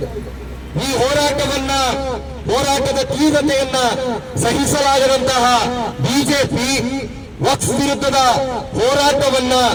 ಈ ಹೋರಾಟದ ತೀವ್ರತೆಯನ್ನ ಸಹಿಸಲಾಗದಂತಹ ಬಿಜೆಪಿ ವಕ್ಫ್ ವಿರುದ್ಧದ ಹೋರಾಟವನ್ನ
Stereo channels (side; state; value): both; identical; correlation 1.00